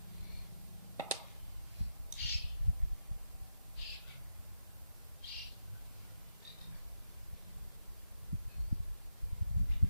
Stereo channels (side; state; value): both; inverted; correlation -0.86